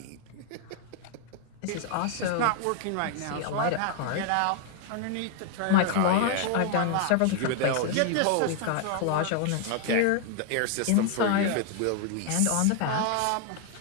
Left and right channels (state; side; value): different; both; correlation 0.00